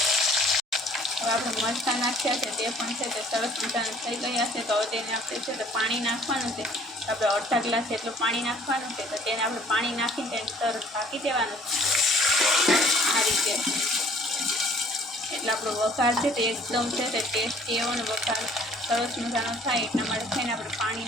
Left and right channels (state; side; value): normal; both; correlation 0.56